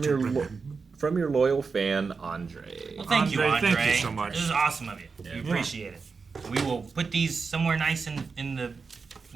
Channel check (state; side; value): quieter; left; 4.9 dB